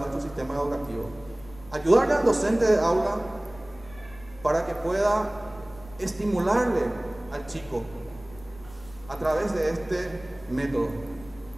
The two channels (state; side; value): noise; left; rumble, 20 dB below the sound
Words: sistema educativo. Ayudarle al docente de aula para que pueda estimularle al chico a través de este método.